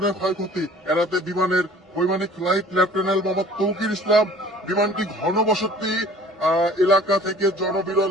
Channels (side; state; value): both; normal; correlation 0.49